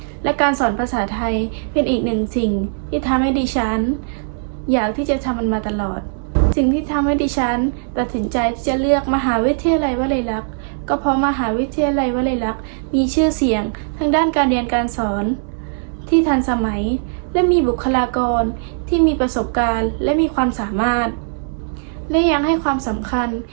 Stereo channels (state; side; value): silent; left; 66 dB below the other